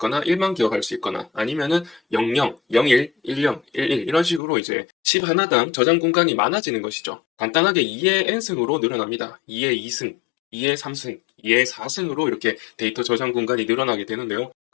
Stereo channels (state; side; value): drops out; right; at 4.4 s